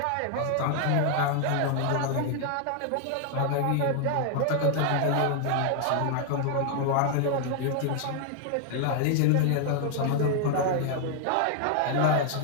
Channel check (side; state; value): both; different; correlation 0.00